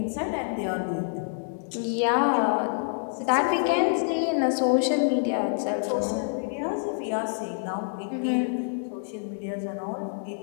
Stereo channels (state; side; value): silent; right; digital silence